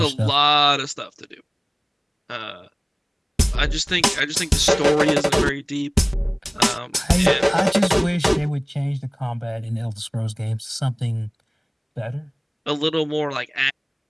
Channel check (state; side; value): identical; both; correlation 1.00